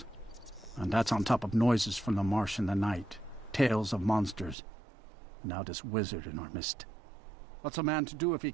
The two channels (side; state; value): left; drops out; at 4.5 s